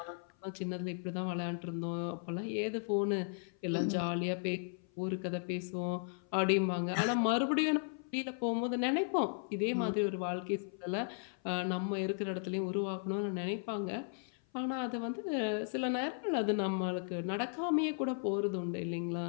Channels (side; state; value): right; silent; 54 dB below the other